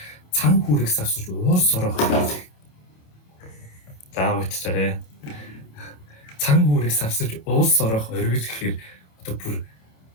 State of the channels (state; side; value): late; right; 27 ms